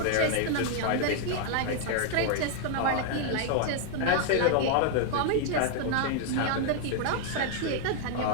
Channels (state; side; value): different; both; correlation 0.00